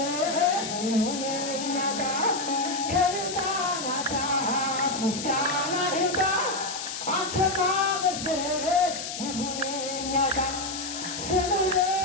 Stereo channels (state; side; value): noise; left; hiss, 7 dB below the sound